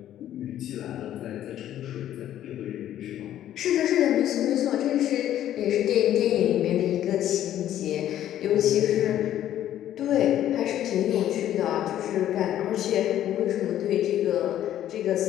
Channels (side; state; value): right; quieter; 11.8 dB